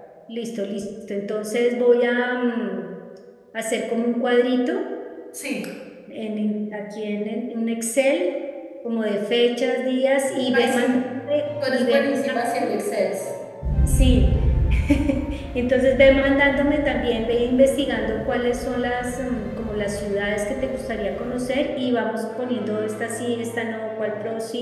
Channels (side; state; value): both; identical; correlation 1.00